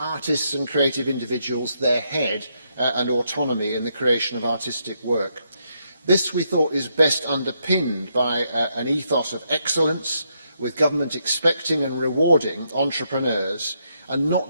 and creative individuals their head and autonomy in the creation of artistic work. This, we thought, is best underpinned by an ethos of excellence, with government expecting and rewarding entrepreneurs and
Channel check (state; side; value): inverted; both; correlation -0.78